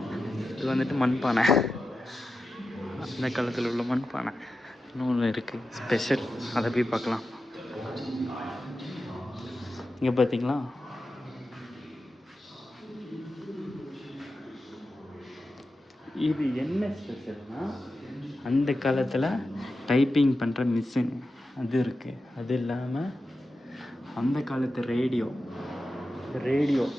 இது வந்துட்டு மண்பானை, அந்த காலத்தில் உள்ள மண்பானை. இன்னொன்று இருக்குது ஸ்பெஷல், அதை போய் பார்க்கலாம். இங்கே பார்த்தீங்களா, இது என்ன ஸ்பெஷல்னா, அந்த காலத்தில் டைப்பிங் பண்ணுற மிஷின் அது இருக்குது. அது இல்லாமல் அந்த காலத்து ரேடியோ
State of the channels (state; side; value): normal; both; correlation 0.91